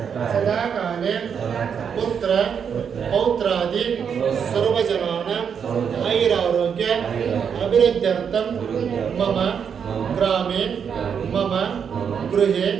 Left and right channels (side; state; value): left; quieter; 7.2 dB